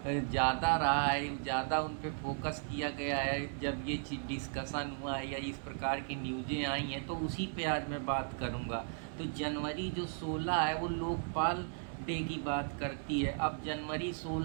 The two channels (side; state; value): left; silent; digital silence